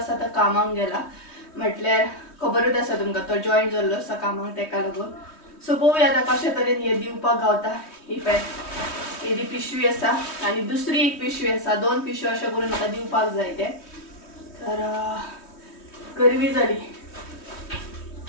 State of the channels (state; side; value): late; right; 3.1 ms